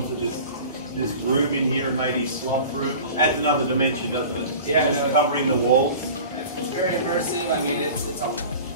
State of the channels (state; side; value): inverted; both; correlation -0.39